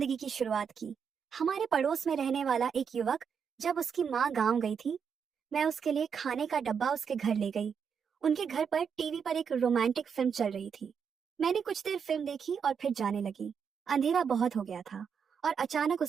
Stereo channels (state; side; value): quieter; left; 6.8 dB